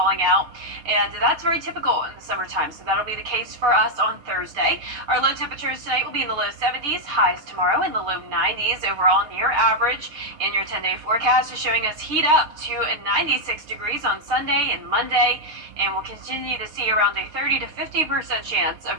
out, and that's very typical in the summertime, so that'll be the case for us on Thursday. Our low temperatures tonight will be in the low 70s, highs tomorrow in the low 90s, overall near average. And your 10-day forecast is showing us heat up to 96 degrees on Sunday and Monday, and we'll continue to see around a 30 to 50% chance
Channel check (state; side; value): late; left; 6.6 ms